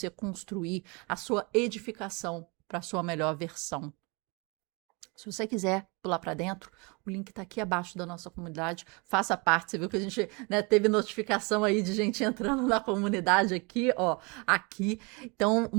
construir a sua edificação para a sua melhor versão. Se você quiser pular para dentro, o link está aqui abaixo da nossa comunidade. Faça parte. Você viu que a gente, né, teve notificação aí de gente entrando na comunidade aqui, ó, aqui. Então,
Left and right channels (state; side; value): quieter; left; 29.8 dB